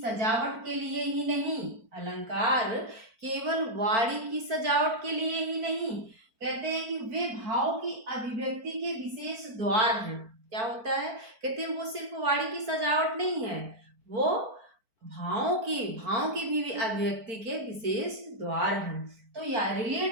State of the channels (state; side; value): late; left; 4.5 ms